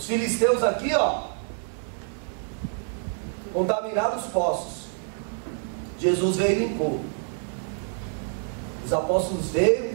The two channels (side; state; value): left; silent; 60 dB below the other